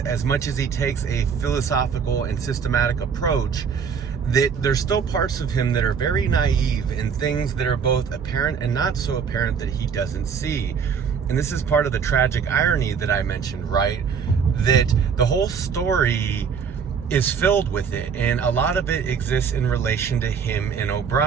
much as he takes a philosophical and systematic approach, that there's still parts of him that are very naive and things that are both apparent and not so apparent that he doesn't see. And this is part of the tragic irony that I mentioned, right? That the whole story is filled with it, and a lot of it exists in relation to him and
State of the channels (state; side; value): quieter; left; 6.5 dB